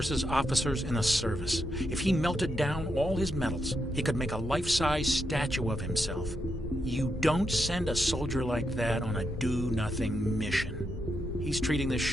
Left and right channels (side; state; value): both; normal; correlation 0.83